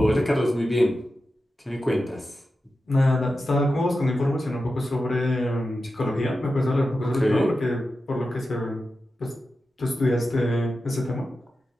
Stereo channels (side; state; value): both; normal; correlation 0.91